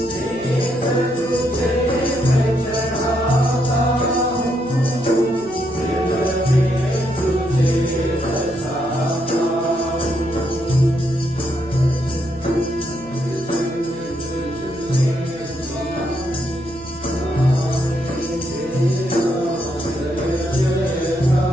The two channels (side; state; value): right; noise; hum, 21 dB below the sound